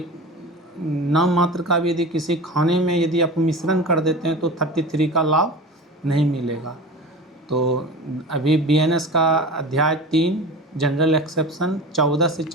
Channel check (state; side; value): normal; both; correlation 0.33